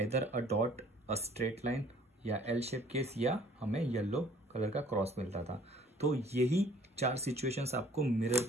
a dot, a straight line, या एल शेप केस, या हमें येलो कलर का क्रॉस मिलता था। तो यही 4 सिचुएशंस आपको मिरर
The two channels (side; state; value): both; normal; correlation 0.55